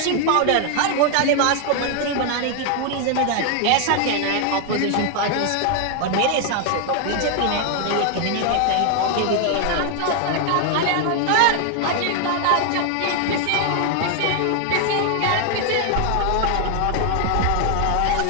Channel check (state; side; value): different; both; correlation 0.00